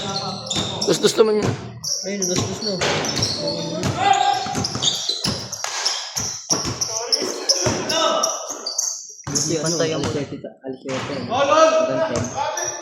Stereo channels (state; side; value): identical; both; correlation 1.00